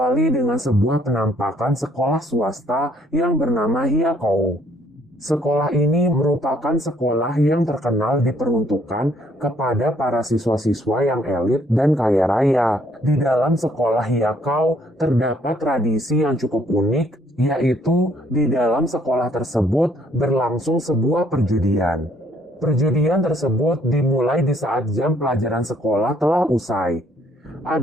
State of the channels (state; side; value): normal; both; correlation 0.65